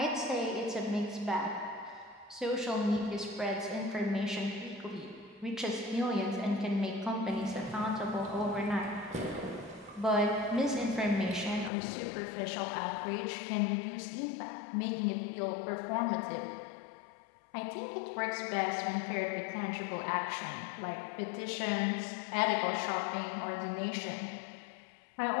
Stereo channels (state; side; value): drops out; right; at 11.7 s